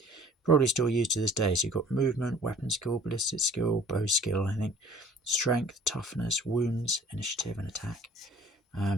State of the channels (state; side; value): normal; both; correlation 0.51